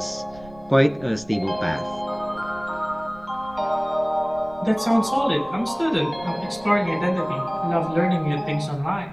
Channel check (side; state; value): right; noise; rumble, 22 dB below the sound